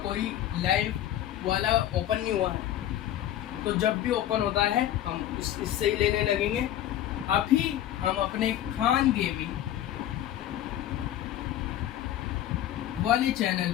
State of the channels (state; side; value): quieter; right; 12.1 dB